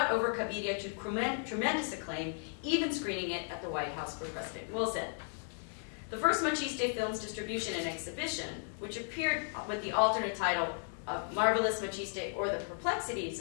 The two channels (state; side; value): silent; right; 54 dB below the other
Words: over Cabiria to tremendous acclaim, even screening it at the White House for President Wilson. The first Maciste film's distribution and exhibition, which appeared with the alternate title of Marvelous Maciste or The Perplexities